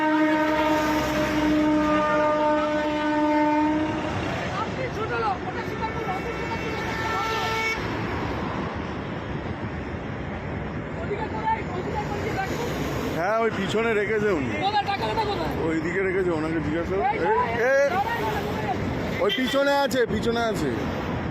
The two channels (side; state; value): both; identical; correlation 1.00